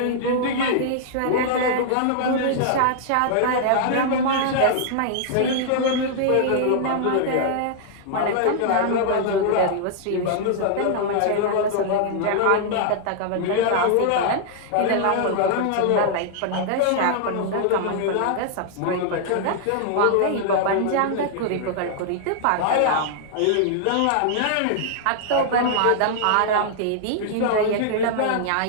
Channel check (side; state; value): both; different; correlation -0.01